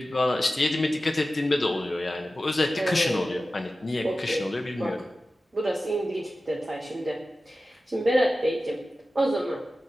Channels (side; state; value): both; normal; correlation 0.95